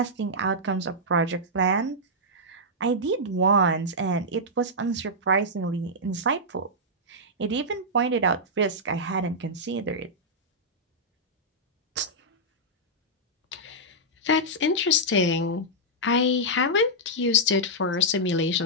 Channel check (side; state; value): both; normal; correlation -0.09